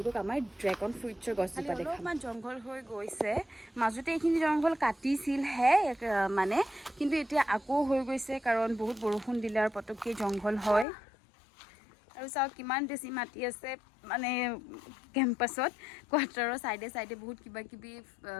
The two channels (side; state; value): right; drops out; at 10.9 s